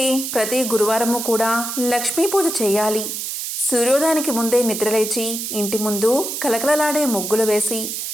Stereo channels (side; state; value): right; noise; hiss, 5 dB below the sound